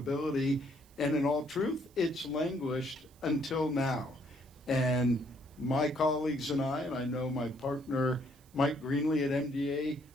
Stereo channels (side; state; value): right; noise; hiss, 29 dB below the sound